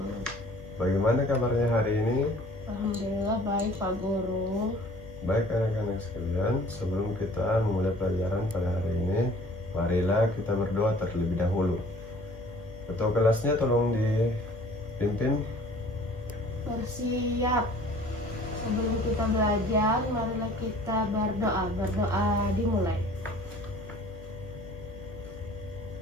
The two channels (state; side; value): normal; both; correlation 0.51